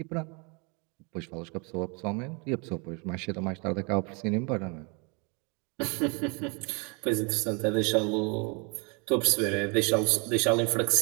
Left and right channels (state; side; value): quieter; left; 32.6 dB